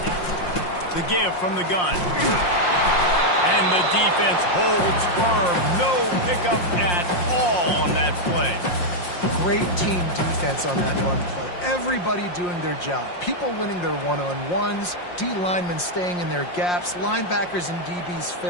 The give from the gun. And the defense holds firm. No pickup at all on that play. Great team defense on that run play. Everybody doing their job. People winning their one-on-ones, D linemen staying in their gaps, linebackers and DBs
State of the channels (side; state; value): right; late; 5.6 ms